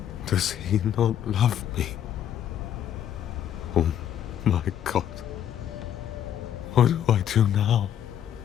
does he not love me? Oh my God. What do I do now?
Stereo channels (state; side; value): quieter; right; 10.0 dB